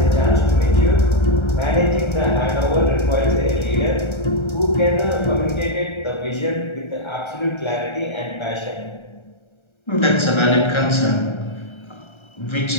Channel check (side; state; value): right; late; 1.3 ms